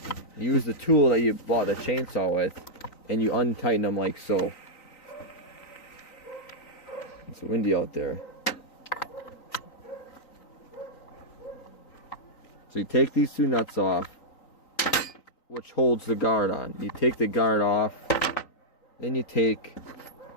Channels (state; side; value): late; right; 3.9 ms